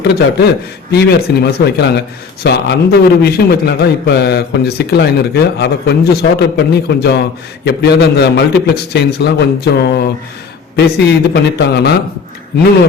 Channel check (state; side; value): quieter; right; 5.5 dB